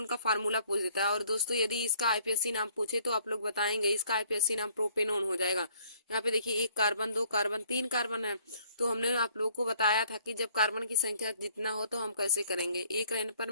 का फार्मूला पूछ देता है। और दोस्तों यदि इसका आईपीएससी नाम पूछे तो आप लोग बताएंगे इसका आईपीएससी नाम प्रोपेनोन हो जाएगा। यहाँ पे देखिए 1 कार्बन 2 कार्बन 3 कार्बन है। तो हमने आप लोगों को बताया था कि जब कार्बन की संख्या जितना हो तो हम कैसे करेंगे। 1 रहने पर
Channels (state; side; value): inverted; both; correlation -0.61